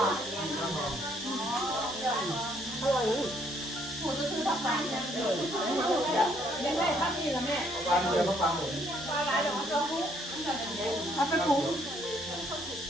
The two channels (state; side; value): normal; both; correlation 0.67